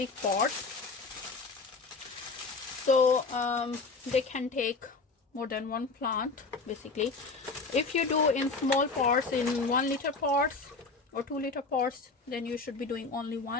pots, so they can take more than one plant basically. If you do in small pots, in 1 liter pots or 2 liter pots, then you should be doing only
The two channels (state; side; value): quieter; right; 4.0 dB